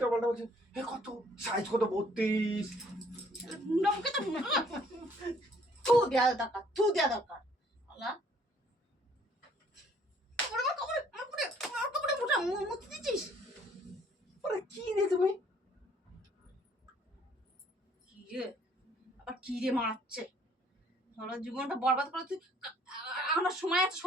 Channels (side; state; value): both; normal; correlation 0.61